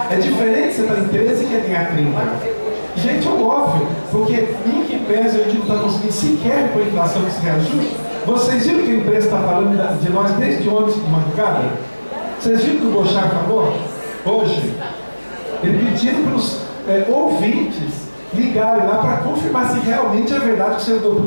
É diferente você estar em 13 e quer ganhar 30. Gente, é óbvio, porque em que pese a gente não está conseguindo sequer com a inflação que se reajuste. Vocês viram que a empresa está falando de nós desde ontem de madrugada? Vocês viram que o Bochar falou hoje? Ele pedindo para os ouvintes ligarem lá para confirmar se realmente é verdade que o servidor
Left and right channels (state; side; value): inverted; both; correlation -1.00